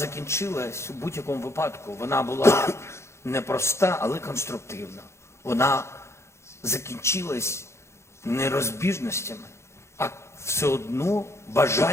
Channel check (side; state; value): right; late; 0.13 ms